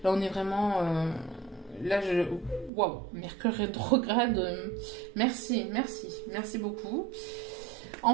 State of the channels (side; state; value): left; drops out; at 2.7 s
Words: Là on est vraiment... Waouh, Mercure rétrograde. Merci beaucoup.